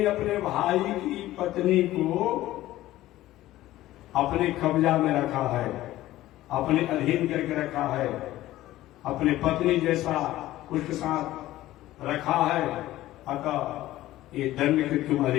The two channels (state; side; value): quieter; right; 15.5 dB